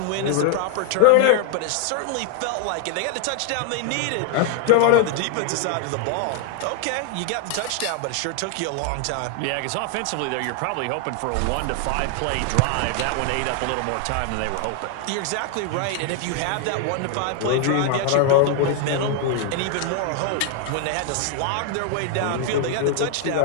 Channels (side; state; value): both; different; correlation 0.00